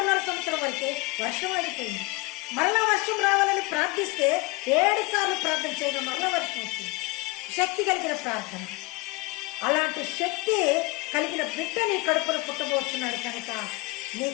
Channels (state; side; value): quieter; right; 24.5 dB